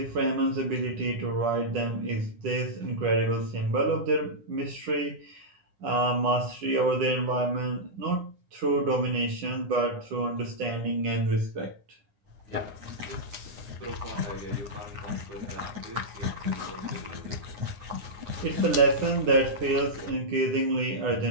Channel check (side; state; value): left; late; 9.4 ms